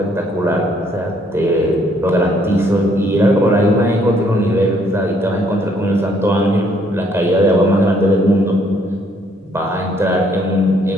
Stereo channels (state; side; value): normal; both; correlation 0.66